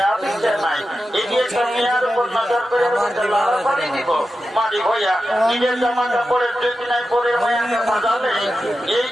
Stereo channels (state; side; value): normal; both; correlation 0.91